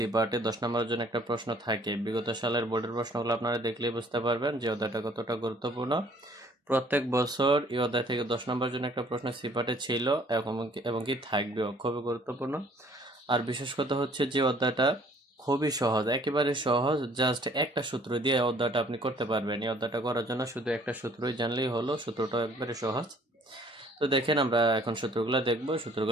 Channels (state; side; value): normal; both; correlation 0.58